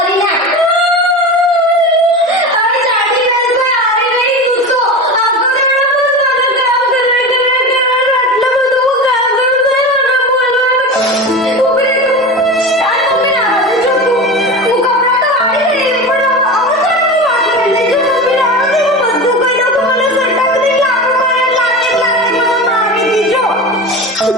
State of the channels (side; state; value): both; normal; correlation 0.27